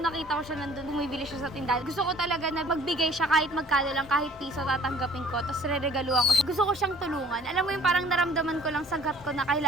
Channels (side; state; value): both; normal; correlation 0.52